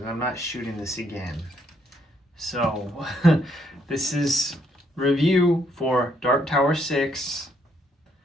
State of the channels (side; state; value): both; normal; correlation 0.72